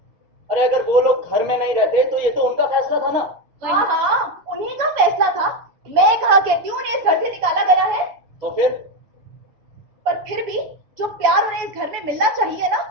अरे अगर वो लोग घर में नहीं रहते तो ये तो उनका फैसला था ना। हाँ हाँ, उन्हीं का फैसला था। मैं कहा कहती हूँ उन्हें इस घर से निकाला गया है। तो फिर? पर फिर भी जो प्यार उन्हें इस घर में मिलना चाहिए ना,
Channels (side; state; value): left; late; 7.0 ms